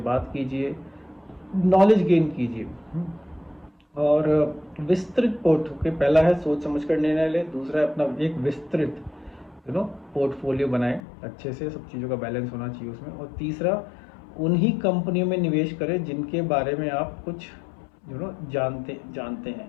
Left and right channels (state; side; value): drops out; right; at 11.0 s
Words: कीजिए, नॉलेज गेन कीजिए। और विस्तृत पहला है सोच समझ कर निर्णय लें, दूसरा है अपना एक विस्तृत पोर्टफोलियो बनाएं, अच्छे से सब चीज़ों का बैलेंस होना चाहिए उसमें। और तीसरा, उन्हीं कंपनियों में निवेश करें जिनके बारे में आप कुछ जानते हैं,